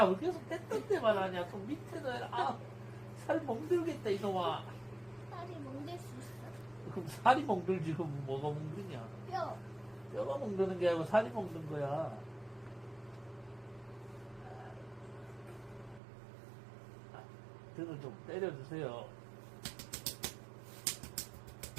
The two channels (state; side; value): drops out; left; at 16.0 s